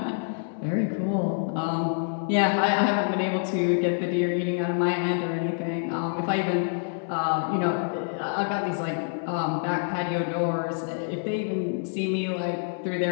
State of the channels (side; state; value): right; silent; digital silence